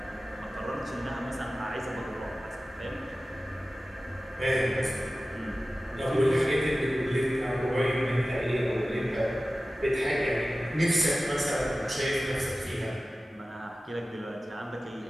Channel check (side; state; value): both; normal; correlation 0.96